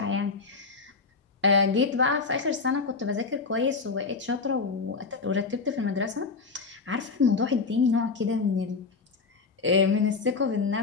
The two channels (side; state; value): right; quieter; 4.5 dB